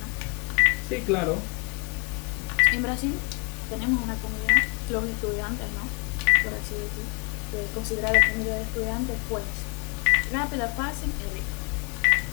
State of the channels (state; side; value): quieter; right; 34.3 dB